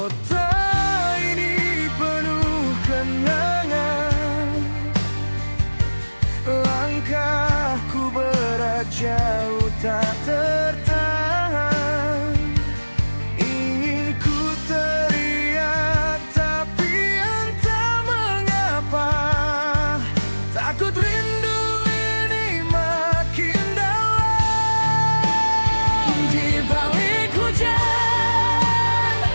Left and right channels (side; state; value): both; inverted; correlation -1.00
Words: ini penuh kenangan, langkahku berat jauh tak tertahan. Ingin ku teriak tapi entah mengapa, takut rindu ini makin dalam. Di balik hujan